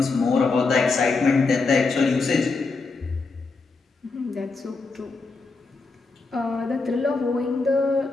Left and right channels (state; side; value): quieter; right; 4.0 dB